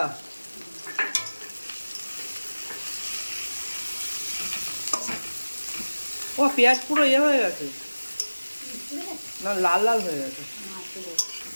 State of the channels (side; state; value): both; inverted; correlation -1.00